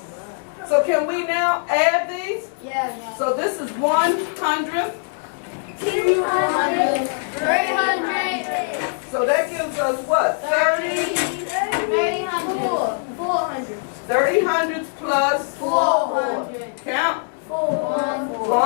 So can we now add these? Yeah. So this is 100. 200. 300. So that gives us what? 30? 300. 400. 30 hundreds plus 400. count. 400.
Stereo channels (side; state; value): right; silent; 64 dB below the other